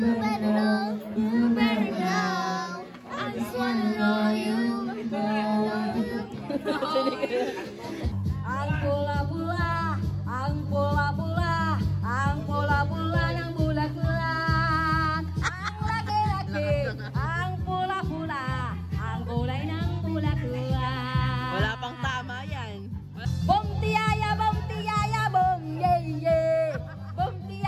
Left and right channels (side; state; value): both; identical; correlation 1.00